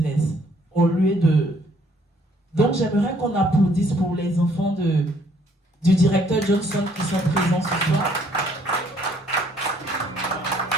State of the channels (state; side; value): normal; both; correlation 0.64